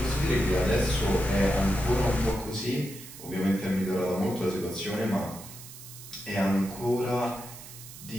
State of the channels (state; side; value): noise; right; hiss, 15 dB below the sound